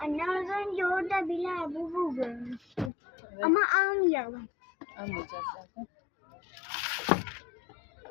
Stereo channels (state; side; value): drops out; right; at 2.9 s